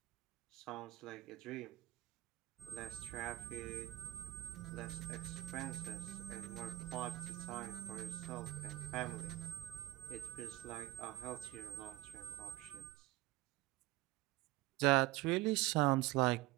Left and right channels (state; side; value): quieter; left; 17.5 dB